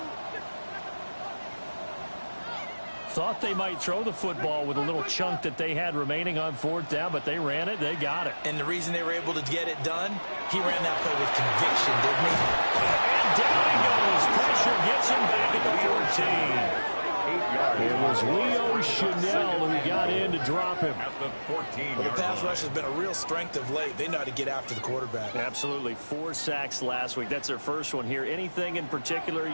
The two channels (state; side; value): inverted; both; correlation -1.00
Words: Thought they might throw the football with a little chunk that they had remaining on 4th down, but they ran it. They got it. And the reason they were able to get it done, he ran that play with conviction, didn't he? And down he goes. Pressure gets him back at the 14. It was Leo Chanel who got in to drop him. At the 14. Well, the pass rush has been a real strength of late. They know how to get after the quarterback. Absolutely. 4 sacks last week. That's their first one here. Anything in particular